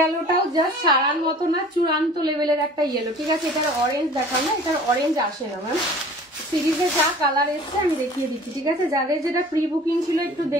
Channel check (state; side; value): normal; both; correlation 0.46